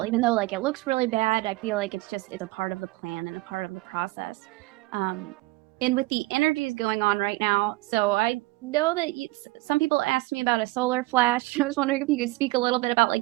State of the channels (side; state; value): left; quieter; 21.0 dB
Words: even though like it looks really bad. I feel like it's a part of the plan and a part of the process. Um, and with the energies going on right now, so I know that some people asked me about a solar flash. I was wondering if you could speak a little bit about